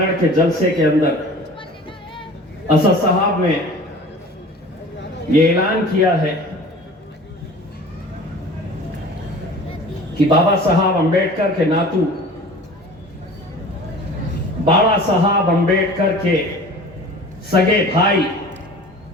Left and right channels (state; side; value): normal; both; correlation 0.42